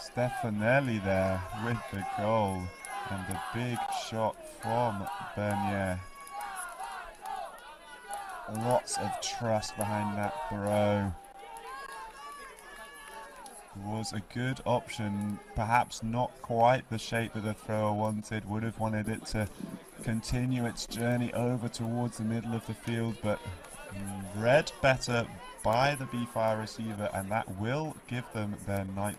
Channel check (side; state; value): both; identical; correlation 1.00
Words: Stefanelli there with the goal, and a big shot from Bernier. Lots of trust behind that throw. Was a good option, perhaps not quite the shape that the thrower wanted. Would have wanted it to continue its journey over towards the middle of the field, but read better by the BeeFire receiver, and that will give them their